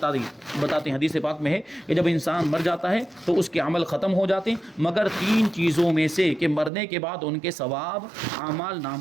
ہیں، حدیث پاک میں ہے کہ جب انسان مر جاتا ہے تو اس کے عمل ختم ہو جاتے ہیں، مگر 3 چیزوں میں سے کہ مرنے کے بعد ان کے ثواب اعمال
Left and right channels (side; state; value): left; drops out; at 6.7 s